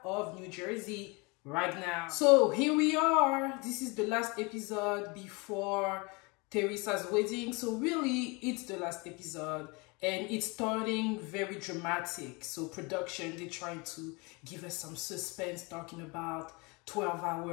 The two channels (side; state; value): right; quieter; 28.2 dB